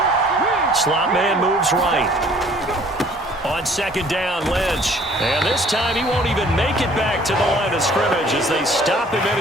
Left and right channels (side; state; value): both; normal; correlation 0.55